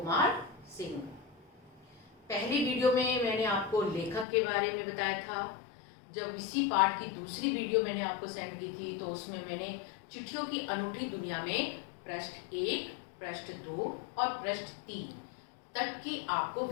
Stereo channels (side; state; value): right; drops out; at 4.2 s